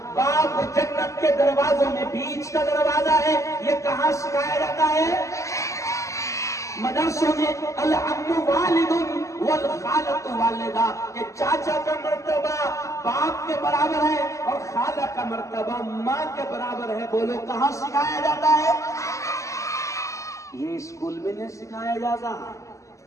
باپ جنت کے دروازوں میں بیچ کا دروازہ ہے. یہ کہاں سکھایا جاتا ہے؟ مدرسوں میں. العم والد والخالۃ والدہ, کہ چاچا کا مرتبہ باپ کے برابر ہے اور خالہ کا مرتبہ ماں کے برابر ہے. بولو کہاں سکھایا جاتا ہے؟ یہ اسکول میں نہیں سکھایا جاتا.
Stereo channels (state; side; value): late; right; 0.15 ms